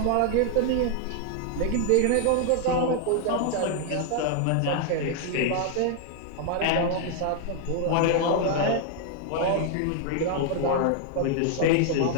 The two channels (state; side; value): different; both; correlation 0.00